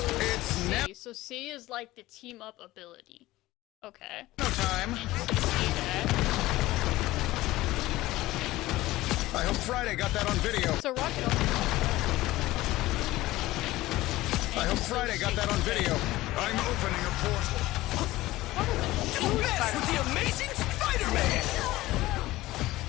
was C. So C is like the team up ability. Okay. No time. Interesting to see that. I hope Friday got that on video. So Rocket also I hope Friday got that on video. I'm opening a portal. Don't mess with the Amazing Spider-Man!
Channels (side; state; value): right; quieter; 17.6 dB